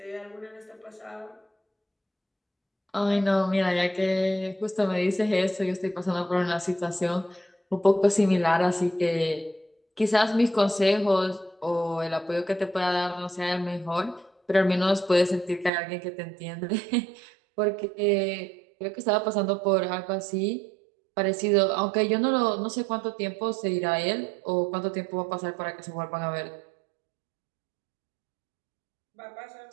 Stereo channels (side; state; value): left; drops out; at 15.7 s